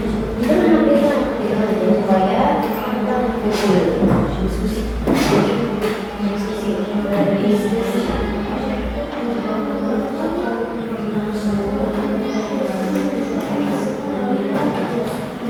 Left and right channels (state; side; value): identical; both; correlation 1.00